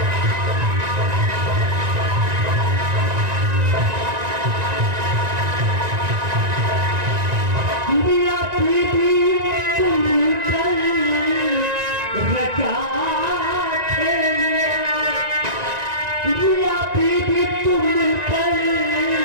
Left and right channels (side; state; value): left; late; 1.9 ms